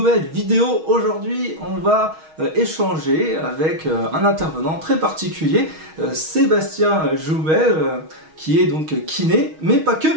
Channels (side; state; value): left; late; 6.3 ms